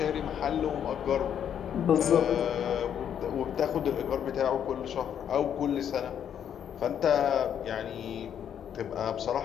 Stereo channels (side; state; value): right; quieter; 9.0 dB